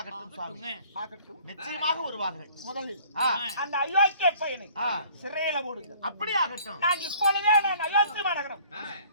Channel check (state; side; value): inverted; both; correlation -0.54